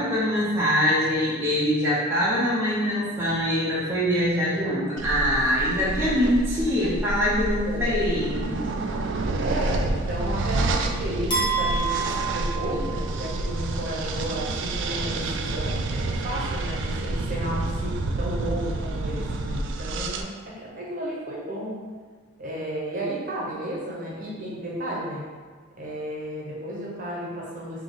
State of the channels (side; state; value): both; normal; correlation 0.45